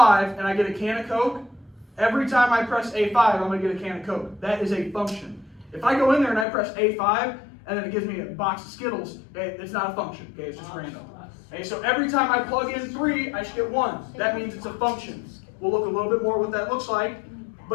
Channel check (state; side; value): drops out; right; at 6.5 s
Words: and I get a can of Coke, every time I press A5, I'm going to get a can of Coke. That is a function. If I go in there and I press A5 and then it gives me a box of Skittles, okay, it's not a function. Okay, it's just random. Okay, so every time I plug in 3, I should get 1. That means it's a function. We'll look a little bit more what that looks like.